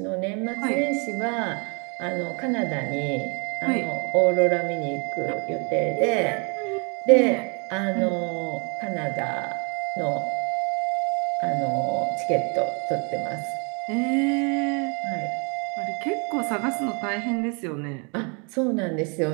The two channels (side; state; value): left; quieter; 35.1 dB